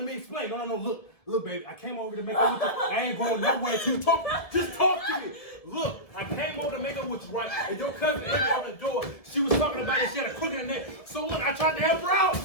me explain. No. Look, baby. I came over to make up with you. I ain't going nowhere to talk. Just talk to me. Look, I came over to make up with you, right? And your cousin opened the door. She was talking about it. She had a crook in her neck. So look, I tried to help her out.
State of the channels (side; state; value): right; late; 1.7 ms